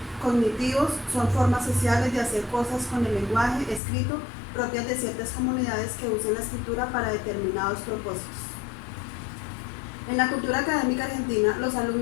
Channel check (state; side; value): drops out; right; at 3.8 s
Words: cognitivos, son formas sociales de hacer cosas con el lenguaje escrito propias de ciertas comunidades que usan la escritura para determinados propósitos. En la cultura académica argentina, los